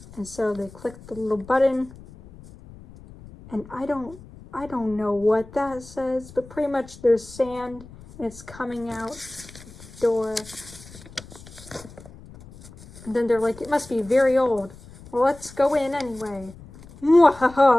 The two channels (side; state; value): left; noise; rumble, 19 dB below the sound